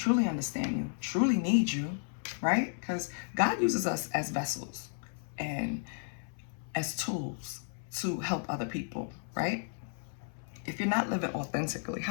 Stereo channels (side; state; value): right; silent; 56 dB below the other